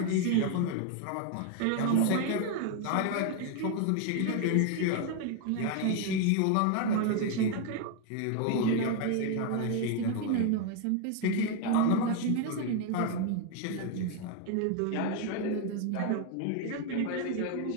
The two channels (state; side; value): different; both; correlation 0.01